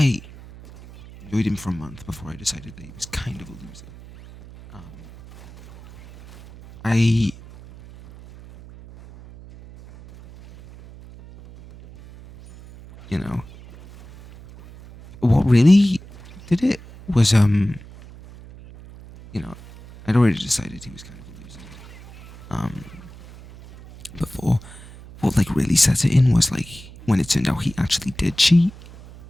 enjoyed him for a month before I decided that he was kind of a loser. You know, what really did it was, you know, I'd already decided he was kind of a loser. Before, what, like, really set it in was, like, when it turned out he actually did cheat.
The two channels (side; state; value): right; noise; hum, 19 dB below the sound